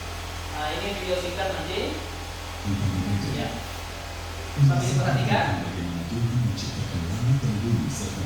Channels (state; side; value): identical; both; correlation 1.00